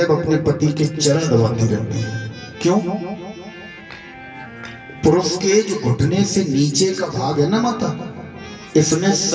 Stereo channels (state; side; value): identical; both; correlation 1.00